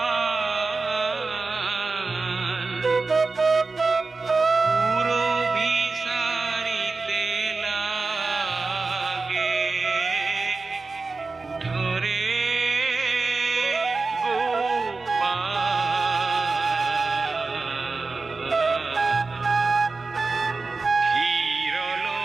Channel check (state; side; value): quieter; left; 3.9 dB